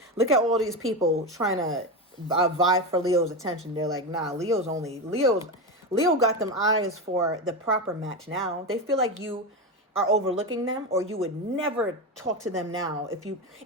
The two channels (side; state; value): both; normal; correlation 0.16